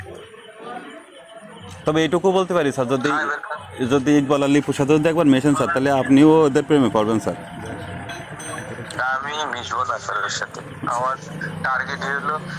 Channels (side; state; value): both; identical; correlation 1.00